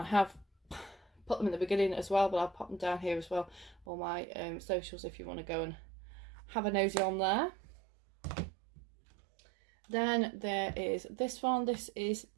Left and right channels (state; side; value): drops out; left; at 3.9 s